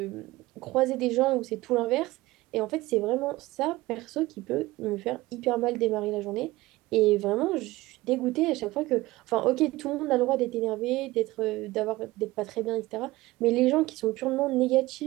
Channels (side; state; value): left; quieter; 19.1 dB